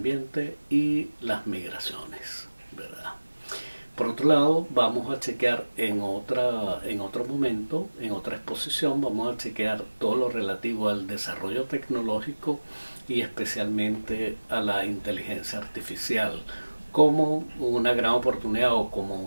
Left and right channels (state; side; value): inverted; both; correlation -1.00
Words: y las migraciones, ¿verdad? Por otro lado, vamos a chequear en otro momento, en otra exposición, vamos a chequear todo lo relativo al desarrollo tecnológico y especialmente a la inteligencia artificial, como una gran oportunidad o como